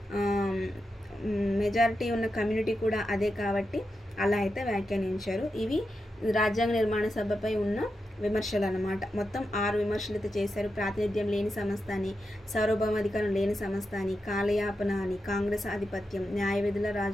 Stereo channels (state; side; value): normal; both; correlation 0.88